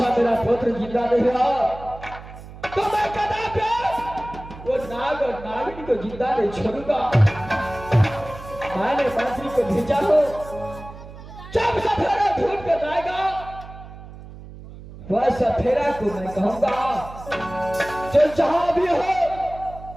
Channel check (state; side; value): noise; right; hum, 15 dB below the sound